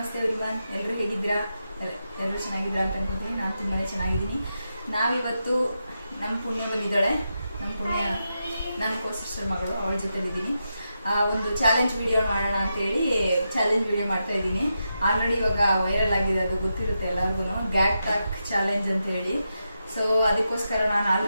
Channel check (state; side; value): inverted; both; correlation -0.87